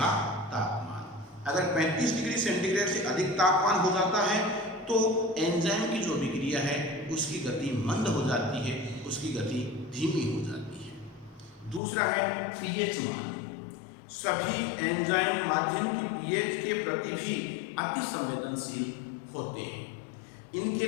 तापमान। अगर 35 डिग्री सेंटीग्रेड से अधिक तापमान हो जाता है तो एंजाइम की जो अभिक्रिया है उसकी गति मंद हो जाती है, उसकी गति धीमी हो जाती है। दूसरा है पीएच मान। सभी एंजाइम माध्यम की पीएच के प्रति भी अति संवेदनशील होते हैं। इनके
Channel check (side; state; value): right; drops out; at 11.8 s